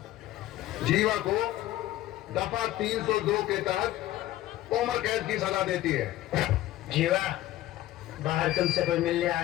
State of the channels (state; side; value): quieter; right; 15.0 dB